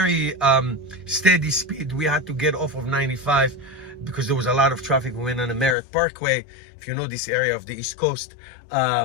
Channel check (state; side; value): drops out; right; at 5.8 s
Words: steady speed. We had to get off of 95 because there was a lot of traffic. We went on the Merritt Parkway, if you know this area of the East Coast,